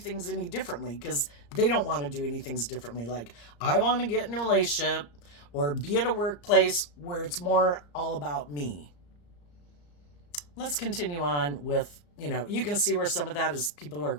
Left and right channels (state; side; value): late; right; 34 ms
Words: any differently, because they don't want to do anything differently. Like, I want to get in a relationship or be at a workplace where it's more all about me. Let's continue on with, you can see where some of that is people who are